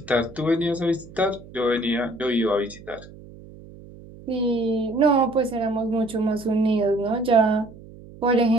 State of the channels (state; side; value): noise; right; hum, 19 dB below the sound